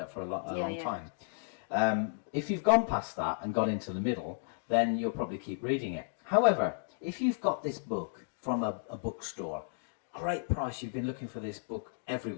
up for a long time. If you've gone past that and got into the middle, then you'll probably keep reading it. However, if you've got this book from a bookstore, great price, you've been looking for this book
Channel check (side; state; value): right; silent; digital silence